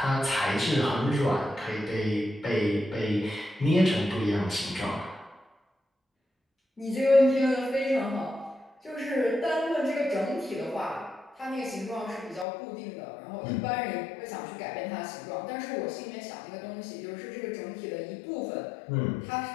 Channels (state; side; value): drops out; right; at 12.5 s